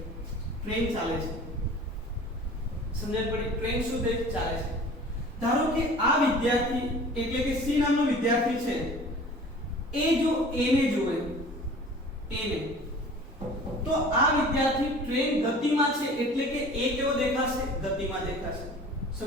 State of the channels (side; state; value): both; normal; correlation 0.44